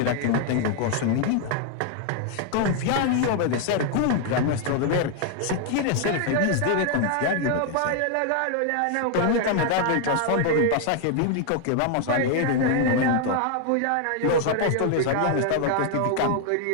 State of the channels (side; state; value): both; different; correlation 0.00